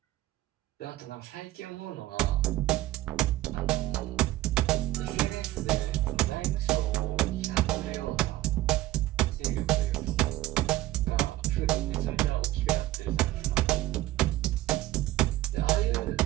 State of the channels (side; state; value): left; quieter; 15.9 dB